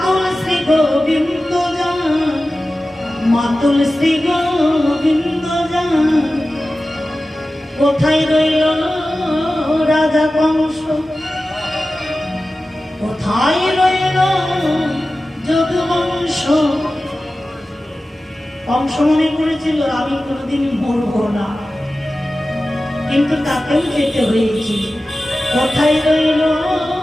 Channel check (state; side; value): normal; both; correlation 0.95